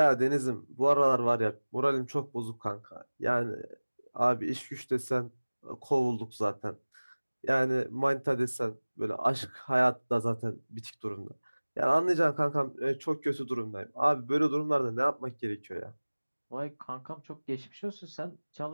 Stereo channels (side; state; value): both; inverted; correlation -1.00